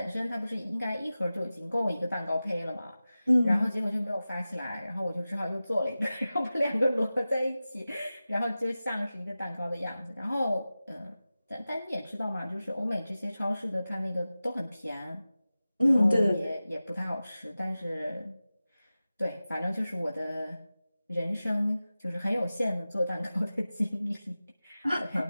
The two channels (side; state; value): both; inverted; correlation -0.96